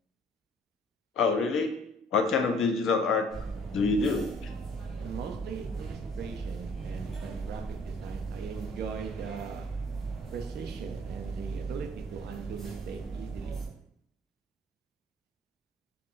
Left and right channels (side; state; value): both; normal; correlation 0.56